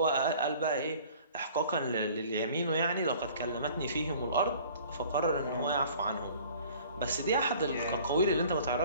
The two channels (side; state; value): both; inverted; correlation -0.50